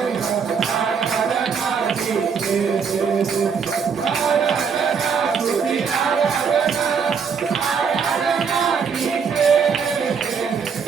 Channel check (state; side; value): quieter; left; 6.2 dB